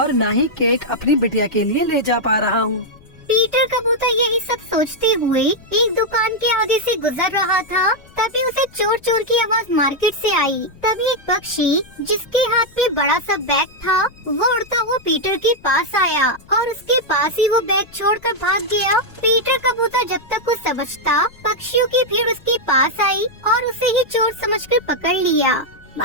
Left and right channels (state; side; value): noise; left; rumble, 25 dB below the sound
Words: न ही केक अपनी बिटिया के लिए ले जा पा रहा हूँ। पीटर कबूतर यही सब सोचते हुए एक दुकान के आगे से गुजर रहा था। तभी उसे चोर चोर की आवाज मार्केट से आई। तभी एक पक्षी जिसके हाथ में बड़ा सा बैग था, वो उड़ता हुआ पीटर के पास आया और उसके पास ही वो बैग छोड़कर भाग गया। पीटर कबूतर जब तक कुछ समझता, पक्षियों की भीड़ उसके पास आई और उसे ही चोर समझकर पकड़ लिया।